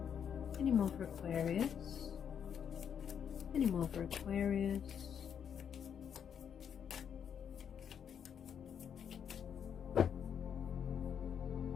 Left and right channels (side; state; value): right; quieter; 8.0 dB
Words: Any more for Aquarius? Any more for Aquarius?